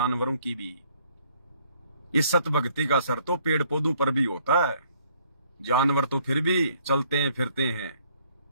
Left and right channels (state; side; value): inverted; both; correlation -0.64